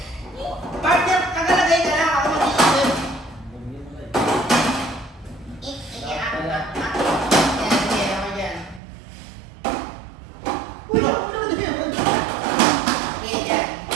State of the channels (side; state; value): left; drops out; at 8.8 s